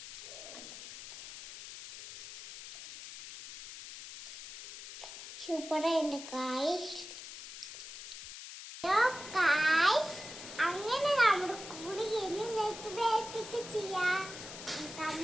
സൂപ്പറായിട്ട് അങ്ങനെ നമ്മുടെ കൂടി ചെയ്യാം.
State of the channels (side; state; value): left; noise; hiss, 12 dB below the sound